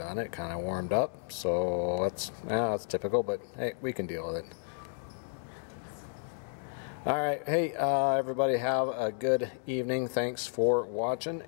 It kind of warmed up. So that's typical, but hey, we can deal with it. Alright, hey, everybody have a good evening. Thanks for watching,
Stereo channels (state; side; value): silent; right; digital silence